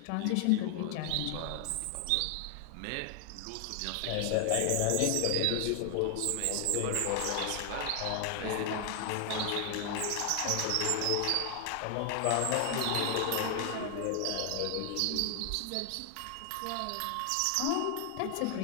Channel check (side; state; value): both; different; correlation 0.00